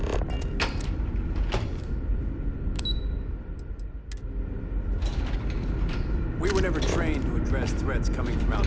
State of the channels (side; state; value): both; identical; correlation 1.00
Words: We were never trained to address threats coming from